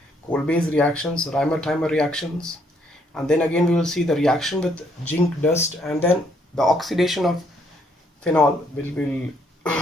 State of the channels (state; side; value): normal; both; correlation 0.70